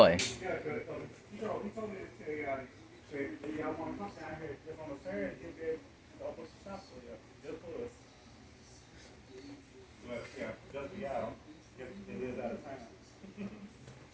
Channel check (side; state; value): both; identical; correlation 1.00